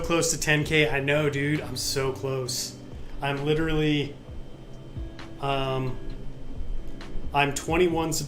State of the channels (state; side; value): identical; both; correlation 1.00